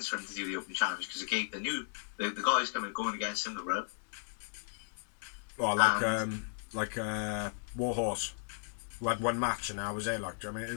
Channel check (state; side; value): silent; right; digital silence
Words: for him to do the open challenge because it gave the guys going against him the rub. Well, like Warhorse, who had one match and I was there. Like, I mean, it